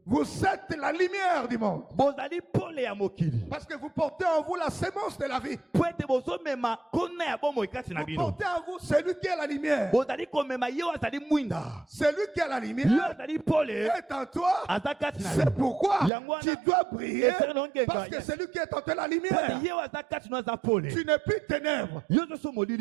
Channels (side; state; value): left; drops out; at 16.1 s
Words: vous êtes la lumière du monde. Parce que vous portez en vous la sémence de la vie. Vous portez en vous celui qui est la lumière. Celui qui est la lumière est en toi. C'est pourquoi tu dois briller. Parce que celui qui est en toi la lumière. Tu n'es plus ténèbres. Les